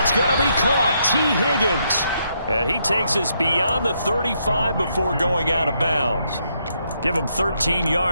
going to be caught. T. Higgins. And he takes us beyond the 35 before going out of bounds. Give him 13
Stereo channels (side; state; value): both; inverted; correlation -0.76